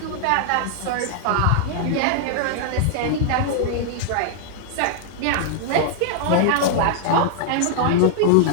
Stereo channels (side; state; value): both; different; correlation -0.01